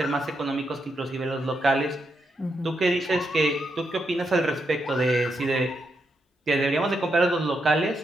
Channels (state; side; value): normal; both; correlation 0.82